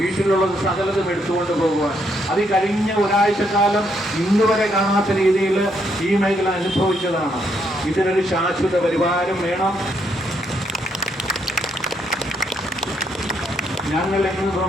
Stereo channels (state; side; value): normal; both; correlation 0.74